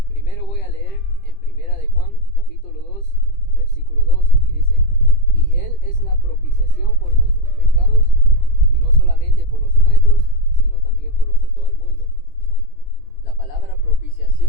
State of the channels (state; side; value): late; right; 20 ms